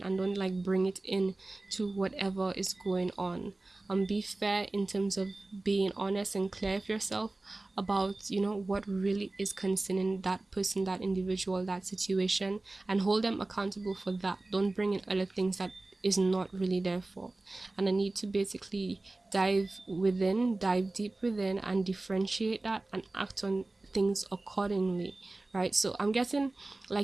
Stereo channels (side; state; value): left; quieter; 3.0 dB